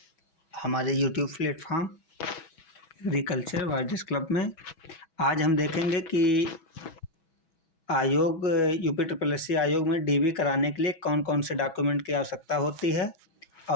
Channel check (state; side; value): late; right; 6.1 ms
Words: हमारे यूट्यूब प्लेटफॉर्म एग्रीकल्चर वाइडिस क्लब में। आज हम देखेंगे कि आयोग यूपी ट्रिपल एस सी आयोग में डीबी कराने के लिए कौन कौन से डॉक्यूमेंट की आवश्यकता होती है